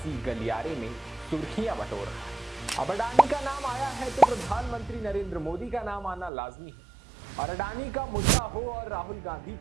गलियारे में सुर्खियां बटोर रहा है। अब अडानी का नाम आया है तो प्रधानमंत्री नरेंद्र मोदी का नाम आना लाजमी है और अडानी का मुद्दा हो और राहुल गांधी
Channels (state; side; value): drops out; left; at 6.3 s